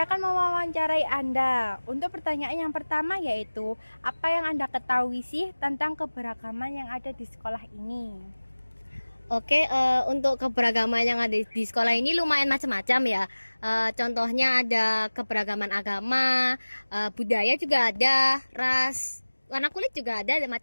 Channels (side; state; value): both; inverted; correlation -1.00